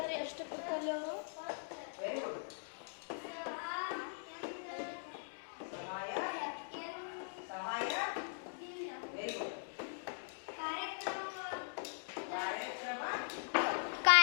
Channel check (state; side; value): silent; right; digital silence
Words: ಎಷ್ಟು ಕೊಡ್ತಾರೆ ಅವರು?